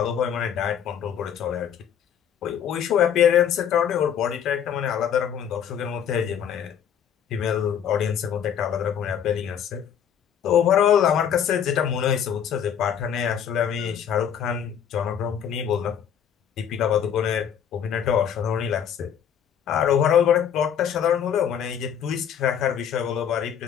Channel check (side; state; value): right; quieter; 8.6 dB